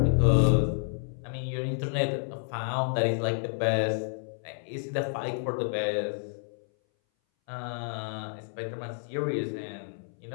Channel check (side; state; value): right; silent; 58 dB below the other